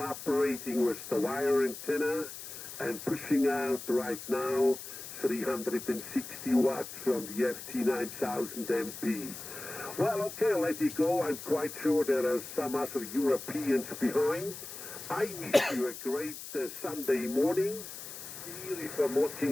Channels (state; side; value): noise; left; hiss, 11 dB below the sound